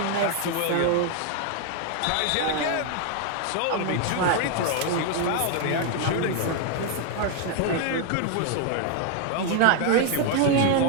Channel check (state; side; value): different; both; correlation 0.01